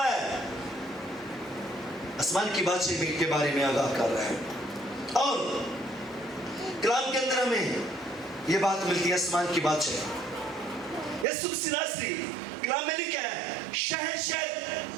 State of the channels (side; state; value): left; drops out; at 11.2 s